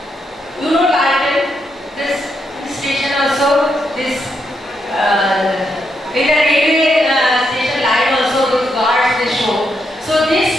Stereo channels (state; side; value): normal; both; correlation 0.80